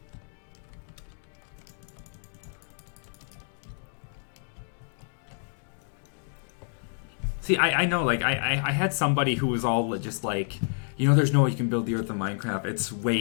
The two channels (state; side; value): silent; right; digital silence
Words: See, I know, like, I had somebody who was all just like, you know, there's no way you can build the Earth of Minecraft. It's